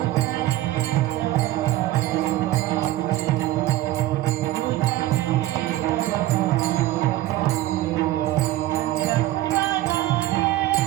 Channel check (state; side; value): quieter; left; 15.5 dB